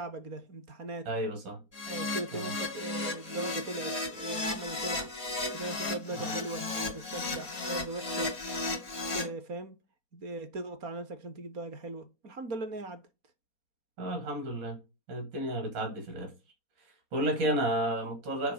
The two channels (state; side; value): late; left; 4.2 ms